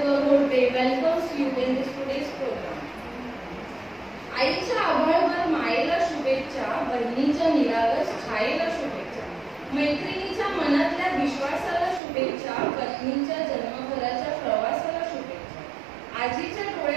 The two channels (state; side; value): drops out; left; at 12.0 s